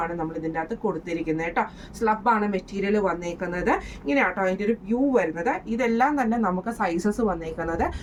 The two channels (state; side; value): identical; both; correlation 1.00